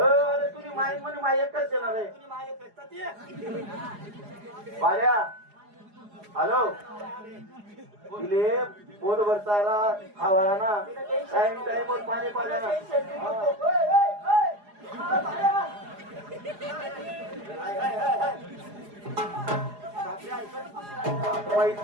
तुझी माई म्हणे माई एकच येणार आहे तुझी माय पेटतात ते बाऱ्या हॅलो तिले पोट भरताला खावाला ना टाइम टाइम वर पाणी पाण्याला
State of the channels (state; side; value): late; left; 4.8 ms